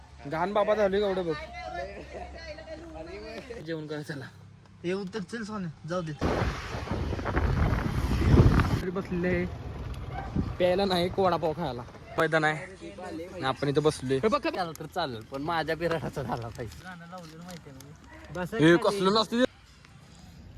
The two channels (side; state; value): both; identical; correlation 1.00